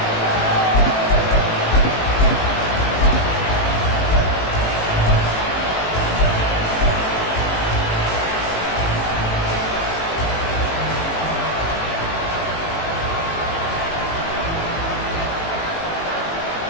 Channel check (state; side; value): late; right; 18 ms